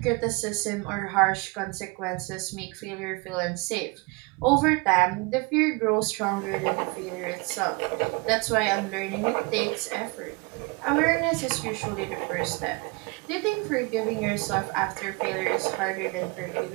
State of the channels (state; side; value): quieter; left; 28.7 dB